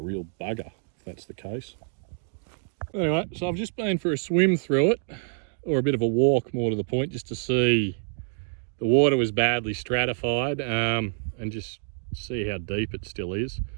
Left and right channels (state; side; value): silent; left; 60 dB below the other